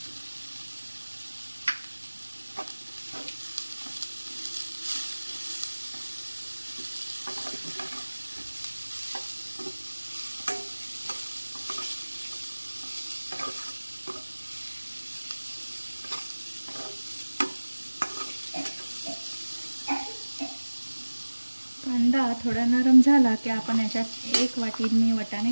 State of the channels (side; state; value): both; inverted; correlation -1.00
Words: कांदा थोडा नरम झाला की आपण याच्यात 1 वाटी मी